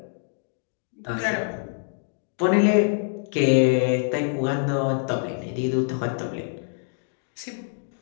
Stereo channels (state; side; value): silent; right; digital silence